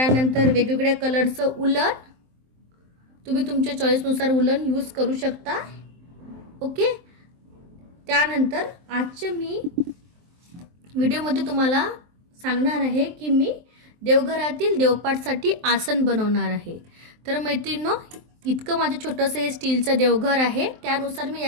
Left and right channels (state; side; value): late; left; 23 ms